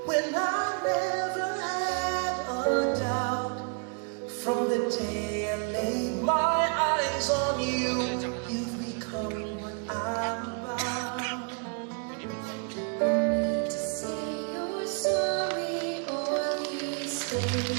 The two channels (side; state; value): left; quieter; 39.9 dB